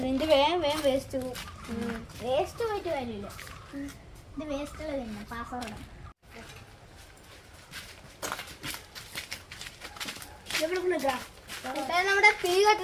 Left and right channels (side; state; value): both; identical; correlation 1.00